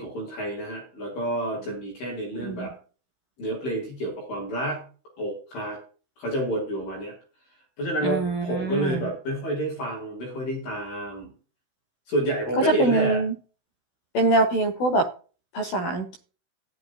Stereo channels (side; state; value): right; late; 16 ms